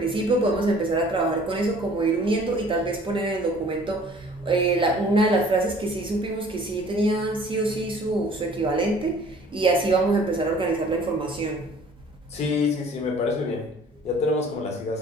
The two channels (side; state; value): both; normal; correlation 0.52